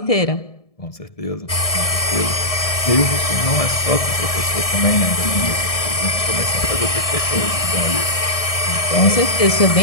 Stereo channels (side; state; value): right; late; 1.7 ms